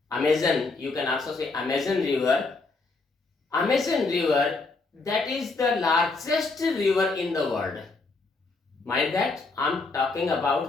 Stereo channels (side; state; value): right; quieter; 3.7 dB